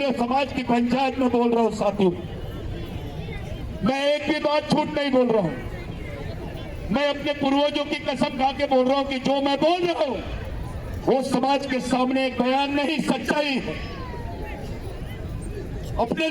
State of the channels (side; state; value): both; identical; correlation 1.00